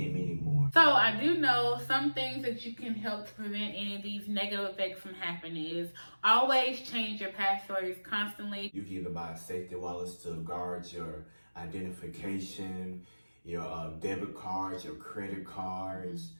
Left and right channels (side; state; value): both; inverted; correlation -1.00